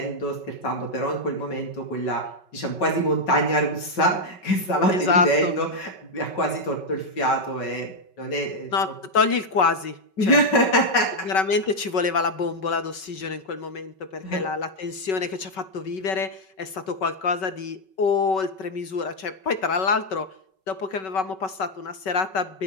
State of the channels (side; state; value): right; late; 5.3 ms